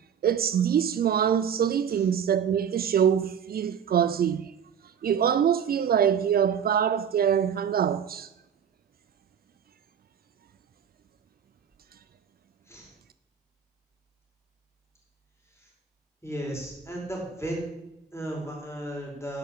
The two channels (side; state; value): left; quieter; 7.8 dB